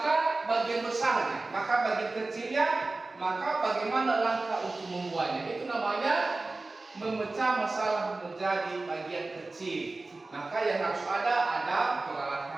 bagian besarnya, maka bagian kecilnya, maka bagaimana langkah untuk membuatnya. Itu namanya memecah masalah menjadi bagian kecil. Maka yang harus ada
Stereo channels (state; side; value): quieter; left; 3.3 dB